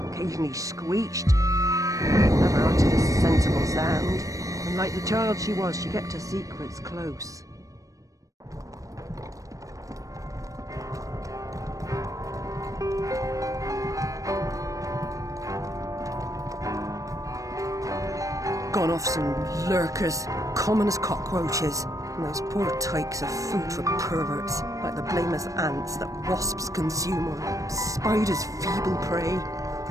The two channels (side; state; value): left; late; 0.16 ms